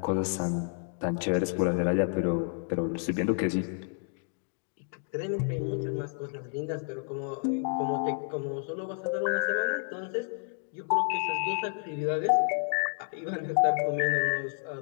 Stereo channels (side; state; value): right; silent; 58 dB below the other